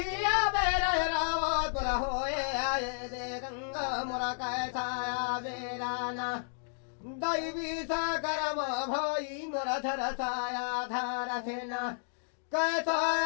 बेरा रावत पर होए आए दे गंगा मोरा कैसा बेरा ना दैवी सा करम भाई मोरा धर साया धार थे ना कैसा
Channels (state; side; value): silent; right; digital silence